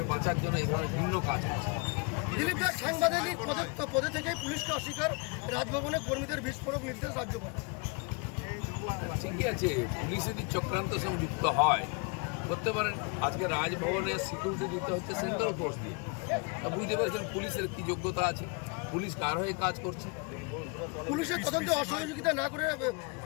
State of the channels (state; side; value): quieter; right; 31.8 dB